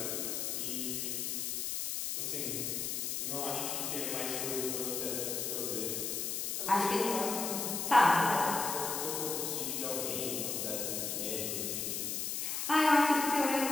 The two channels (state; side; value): noise; left; hiss, 2 dB below the sound